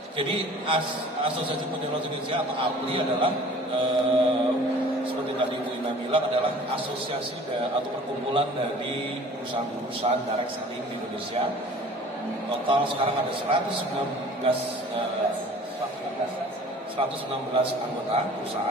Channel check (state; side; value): normal; both; correlation 0.47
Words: Jadi Asosiasi Penjualan Indonesia atau APLI adalah seperti tadi Bu Ina bilang, adalah asosiasi atau perkumpulan dari perusahaan-perusahaan direct selling di Indonesia. Total sekarang ada 116 anggota